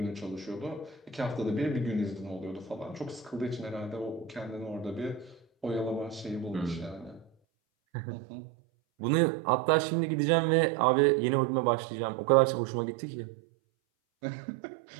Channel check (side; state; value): left; drops out; at 7.3 s